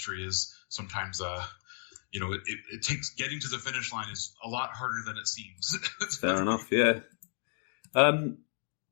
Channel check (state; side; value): silent; right; digital silence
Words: is sometimes it takes getting to the finish line is a lot harder than it seems. Fair enough, yeah.